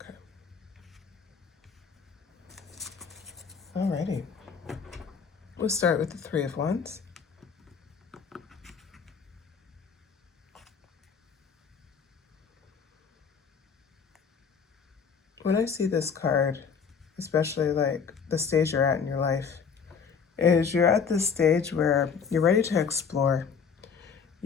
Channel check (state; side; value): quieter; right; 6.2 dB